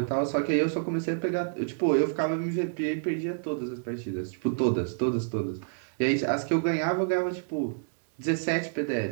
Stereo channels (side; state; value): left; silent; digital silence